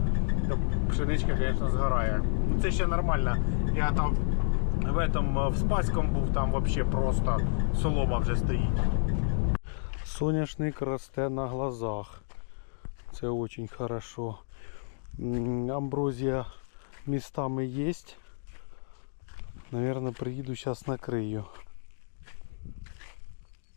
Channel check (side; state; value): right; silent; digital silence